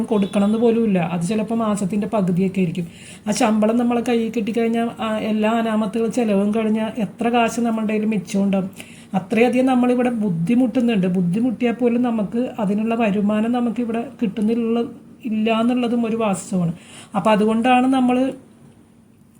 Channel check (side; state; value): both; identical; correlation 1.00